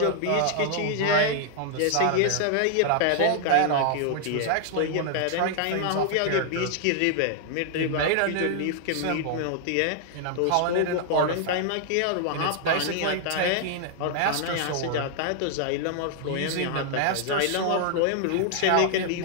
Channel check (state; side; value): different; both; correlation -0.01